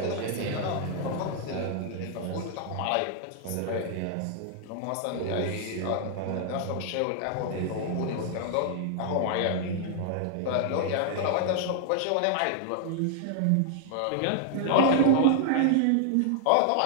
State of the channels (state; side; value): different; both; correlation -0.01